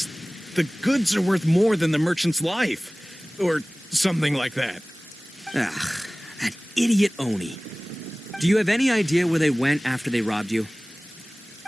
the goods are worth more than the merchant's life. Or something like that. Ugh, that idiot Oni. Do you have any idea where they went after they robbed you?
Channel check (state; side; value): normal; both; correlation 0.98